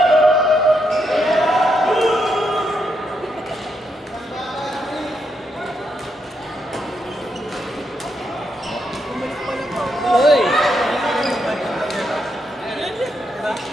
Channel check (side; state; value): both; normal; correlation 0.80